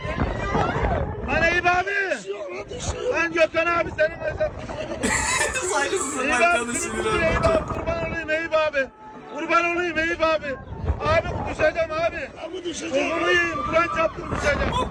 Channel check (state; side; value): identical; both; correlation 1.00